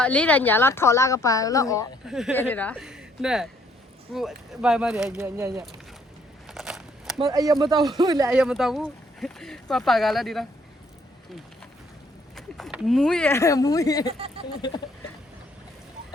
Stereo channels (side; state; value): both; normal; correlation 0.66